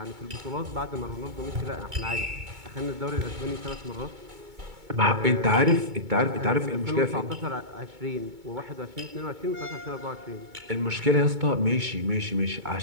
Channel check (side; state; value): left; late; 2.2 ms